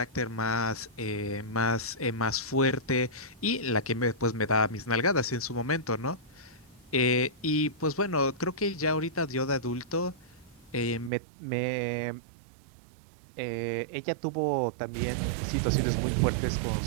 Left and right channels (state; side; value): drops out; left; at 11.1 s